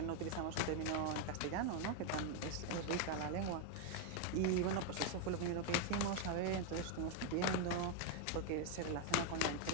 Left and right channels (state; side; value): different; both; correlation 0.01